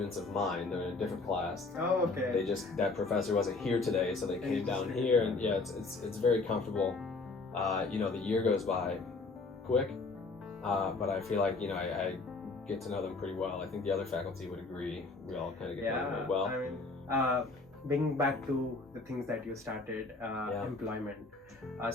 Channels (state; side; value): quieter; right; 3.7 dB